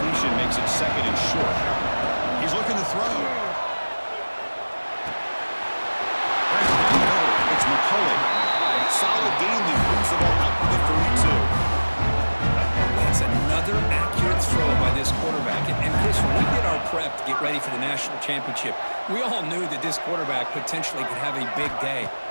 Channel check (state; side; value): inverted; both; correlation -1.00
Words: makes it second and short. He's looking to throw. Right down the middle, it's McCulley. Solid gain, he moves the ball up to the 32. That's another accurate throw by this quarterback. And Chris, when we did our prep to get ready for the national championship, we all knew that this quarterback potentially could have a big day.